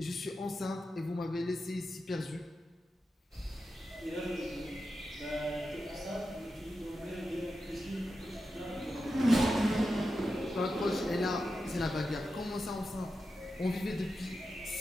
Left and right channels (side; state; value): both; normal; correlation 0.90